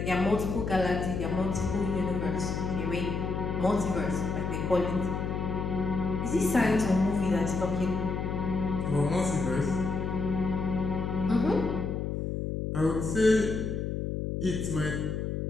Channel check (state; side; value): noise; left; hum, 2 dB below the sound